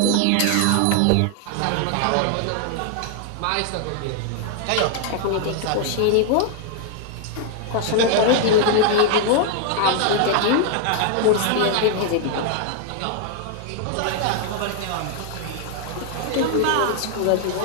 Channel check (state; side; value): different; both; correlation 0.00